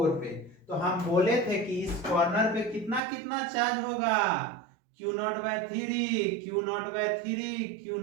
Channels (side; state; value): left; drops out; at 3.0 s